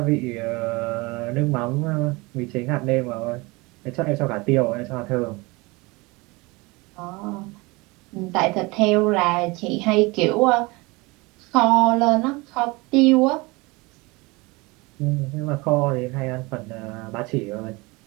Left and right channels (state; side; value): quieter; left; 24.7 dB